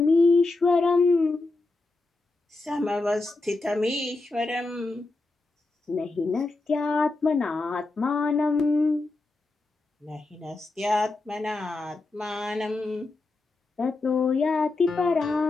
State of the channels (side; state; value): right; quieter; 3.3 dB